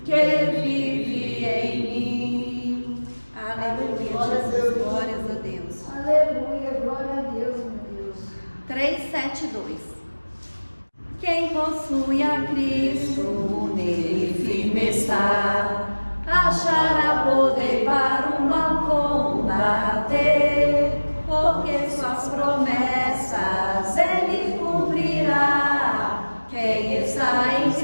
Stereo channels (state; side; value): inverted; both; correlation -1.00